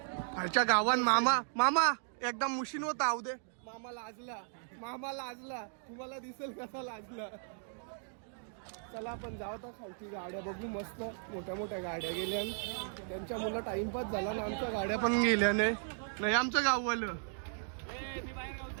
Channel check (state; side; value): silent; left; digital silence